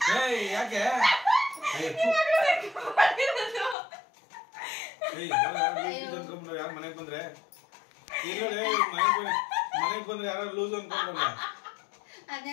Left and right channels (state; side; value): drops out; right; at 3.8 s